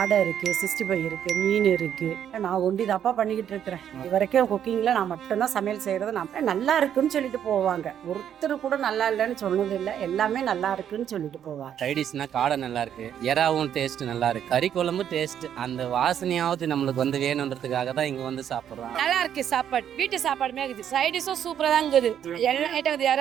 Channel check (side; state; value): left; quieter; 9.5 dB